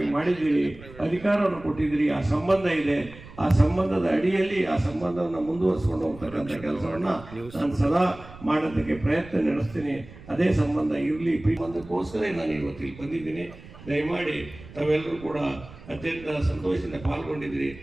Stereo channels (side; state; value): right; noise; rumble, 18 dB below the sound